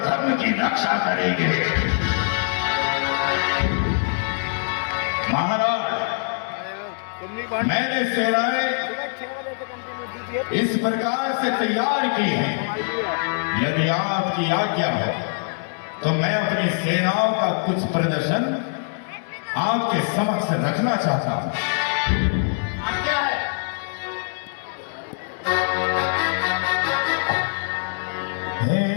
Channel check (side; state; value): right; silent; 63 dB below the other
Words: धर्म की रक्षा करेंगे। महाराज मैंने सेनाएं इस प्रकार से तैयार की है, यदि आपकी आज्ञा हो तो मैं अपनी सेनाओं का कुछ प्रदर्शन आपके समक्ष रखना चाहता हूं। हे